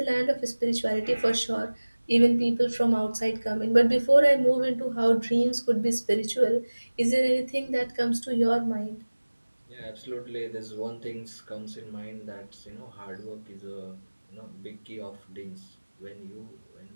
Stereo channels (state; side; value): inverted; both; correlation -1.00